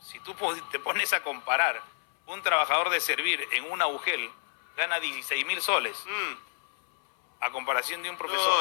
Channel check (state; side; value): silent; right; 58 dB below the other